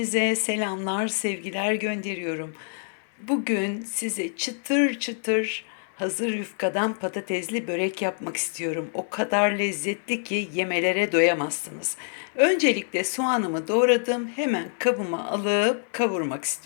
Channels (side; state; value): right; silent; digital silence